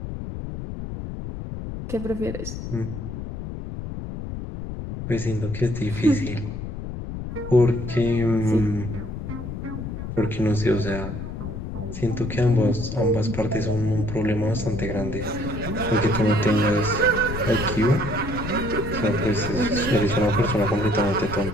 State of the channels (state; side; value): noise; left; rumble, 7 dB below the sound